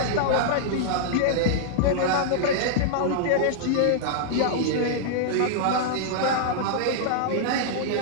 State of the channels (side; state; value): both; different; correlation -0.01